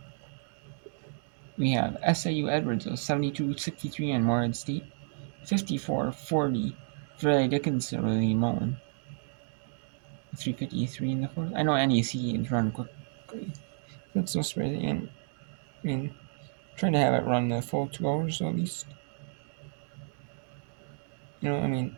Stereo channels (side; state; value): left; silent; digital silence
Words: We have SIU Edwards 72-63 on Morehead State, 54-40 Fairleigh Dickinson Willie Mullen, 3:53 in the fourth. I know NEC is run quickly. That's no spread, and I mean, trying to have it run the full 2 hours at least. I mean,